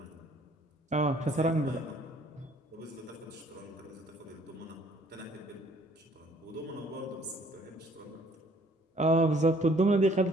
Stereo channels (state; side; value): normal; both; correlation 0.60